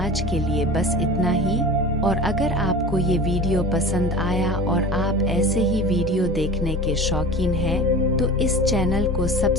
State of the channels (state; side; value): normal; both; correlation 0.35